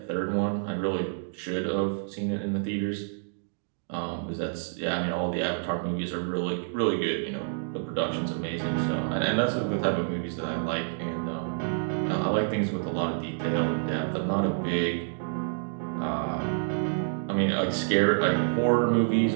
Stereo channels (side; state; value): left; silent; digital silence